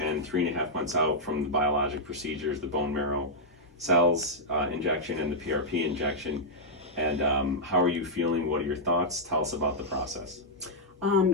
and 3.5 months out from the biologic procedures, the bone marrow cells injection and the PRP injection. And how are you feeling? What are your thoughts? Tell us about the process.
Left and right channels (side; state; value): both; normal; correlation -0.07